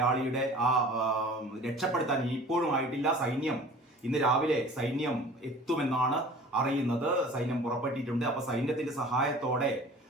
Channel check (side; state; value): both; normal; correlation 0.44